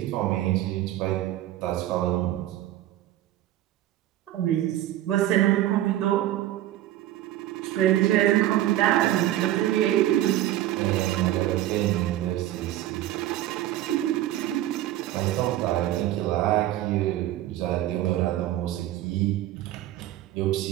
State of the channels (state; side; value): quieter; left; 13.8 dB